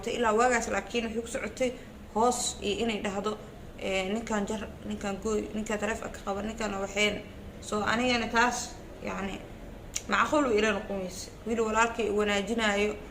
إلا واغاس لكن وحيك سعوتي هوس إني دهدو نكان جر نكان قوي نكان ترفق قبل نكان وحين أنا يعني تاس يعني معقول إلى نقوميس ويلو ولكن وناجنايو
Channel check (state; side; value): identical; both; correlation 1.00